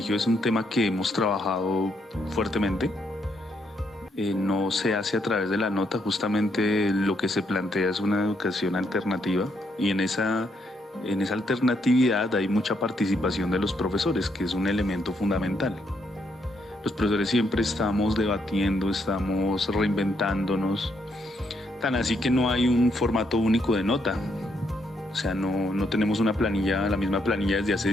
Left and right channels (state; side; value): normal; both; correlation 0.75